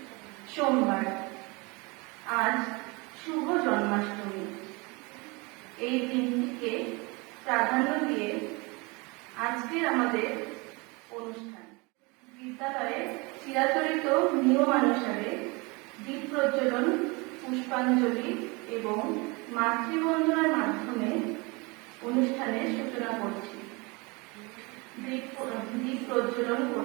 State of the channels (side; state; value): left; quieter; 27.3 dB